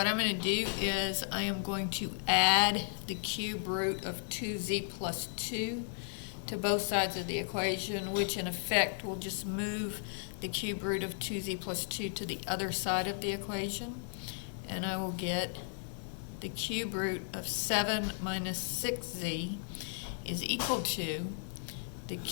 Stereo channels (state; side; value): silent; right; 54 dB below the other